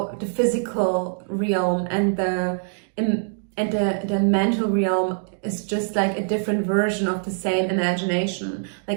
physical realm and the mental realm is just like a different version of the same imagination?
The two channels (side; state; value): left; silent; digital silence